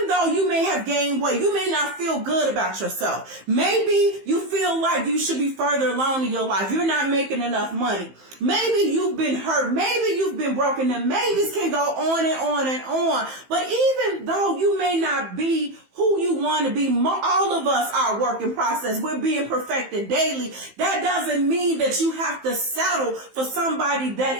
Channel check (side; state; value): left; late; 15 ms